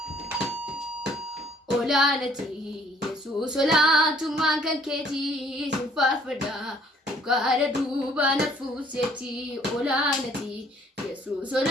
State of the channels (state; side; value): normal; both; correlation 0.60